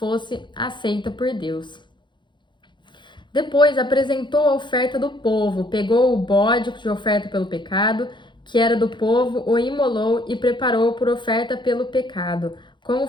aceita por Deus. Depois apresentou a oferta do povo, pegou o bode de oferta pelo pecado, que era do povo, o imolou e preparou por oferta pelo pecado, como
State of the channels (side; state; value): right; late; 0.23 ms